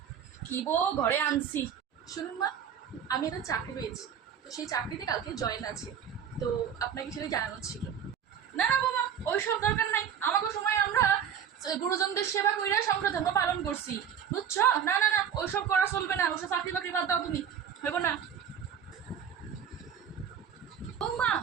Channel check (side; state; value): left; quieter; 8.3 dB